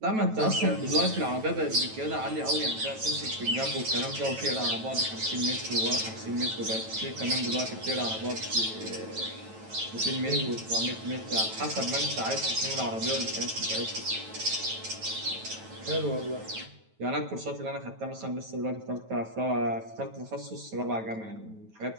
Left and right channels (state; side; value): late; left; 9.2 ms